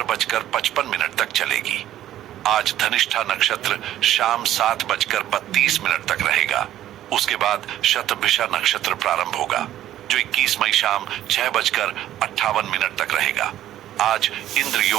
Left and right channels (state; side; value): quieter; left; 12.7 dB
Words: तक चलेगी। आज धनिष्ठा नक्षत्र शाम 7:32 तक रहेगा। उसके बाद शतभिषा नक्षत्र प्रारंभ होगा जो 21 मई शाम 6:58 तक रहेगा। आज इंद्र